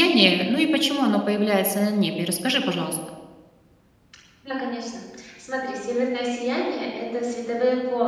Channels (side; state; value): both; identical; correlation 1.00